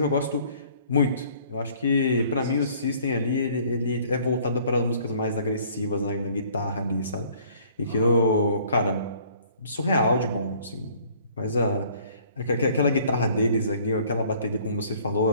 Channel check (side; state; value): both; inverted; correlation -0.57